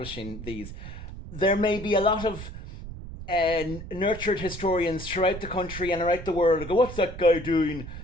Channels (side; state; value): right; noise; rumble, 11 dB below the sound